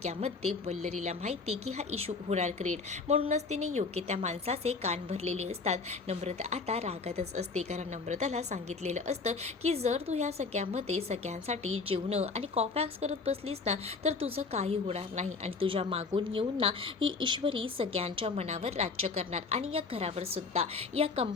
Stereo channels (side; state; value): right; quieter; 4.4 dB